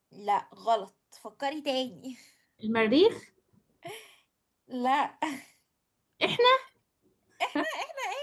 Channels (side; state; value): both; identical; correlation 1.00